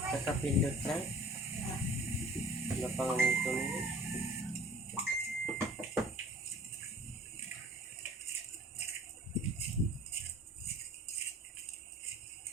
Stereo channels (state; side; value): normal; both; correlation 0.49